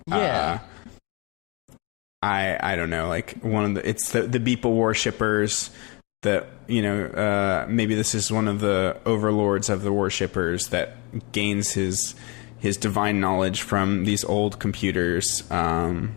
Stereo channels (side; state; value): right; quieter; 29.0 dB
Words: Yeah. I don't know, like it's the Beeple worshippers that, maybe this is one of the overlords of the worshippers that gains his divine knowledge from these old computers. I